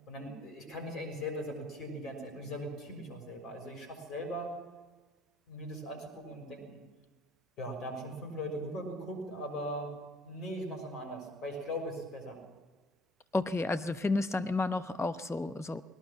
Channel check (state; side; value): normal; both; correlation 0.63